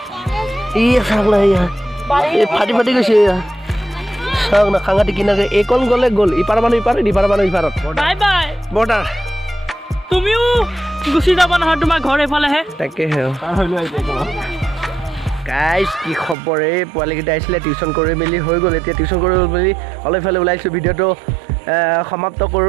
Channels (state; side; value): drops out; left; at 16.4 s